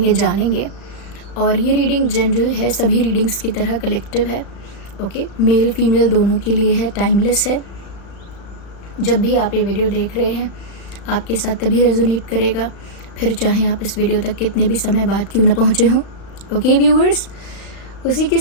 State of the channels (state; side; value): late; right; 36 ms